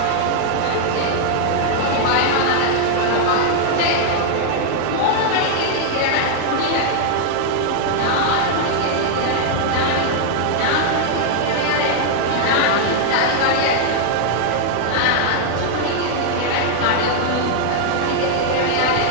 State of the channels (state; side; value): different; both; correlation 0.00